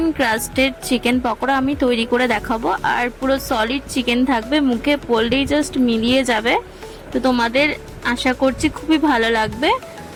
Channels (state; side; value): identical; both; correlation 1.00